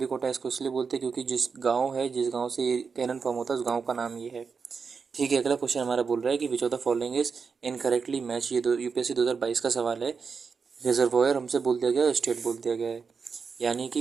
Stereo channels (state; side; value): quieter; left; 5.5 dB